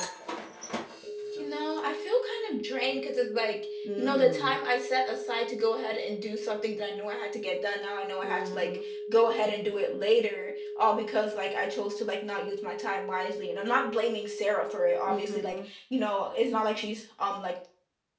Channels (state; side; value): identical; both; correlation 1.00